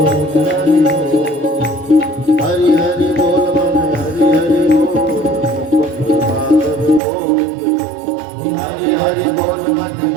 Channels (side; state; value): left; drops out; at 7.0 s